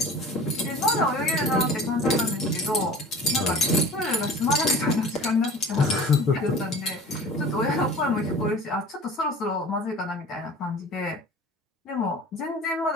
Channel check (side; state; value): both; normal; correlation 0.41